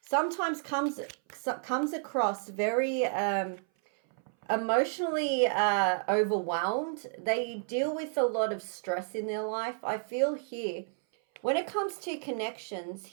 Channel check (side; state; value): left; silent; 57 dB below the other